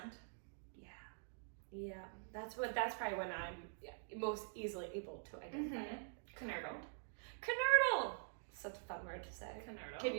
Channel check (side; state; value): left; silent; digital silence